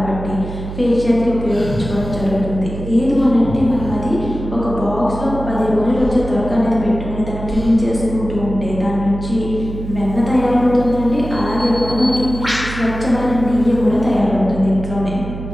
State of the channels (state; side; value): noise; right; hum, 9 dB below the sound